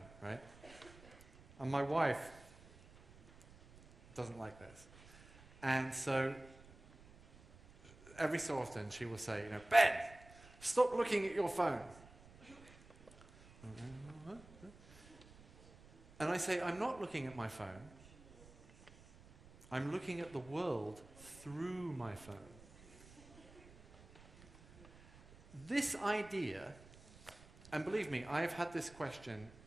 right? And my wife doesn't like this. And so every so often she will say, you know, Ben, stop looking at your phone. And I say, I'm not looking at my phone. I'm looking at the world through my phone. This idea, and believe me, I've had this question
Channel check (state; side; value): noise; right; rumble, 21 dB below the sound